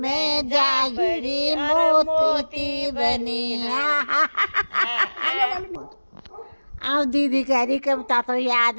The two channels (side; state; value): both; inverted; correlation -1.00